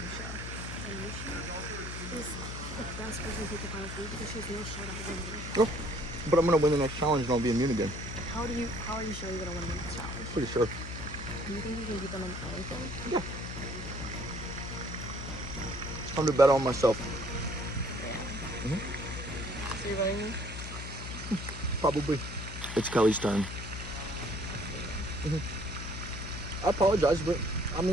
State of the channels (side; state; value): left; noise; hum, 8 dB below the sound